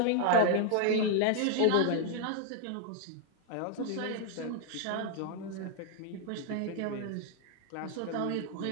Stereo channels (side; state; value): both; different; correlation 0.00